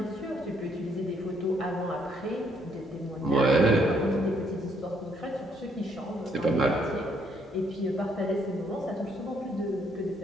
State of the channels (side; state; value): both; normal; correlation 0.69